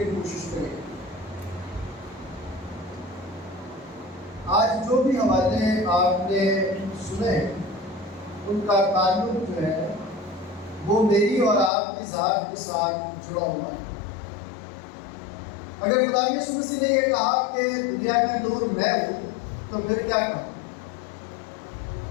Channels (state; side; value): drops out; right; at 11.7 s